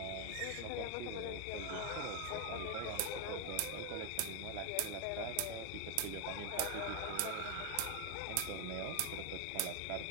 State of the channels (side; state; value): both; different; correlation 0.01